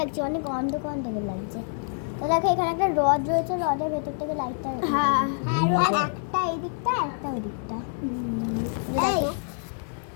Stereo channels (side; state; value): right; silent; 59 dB below the other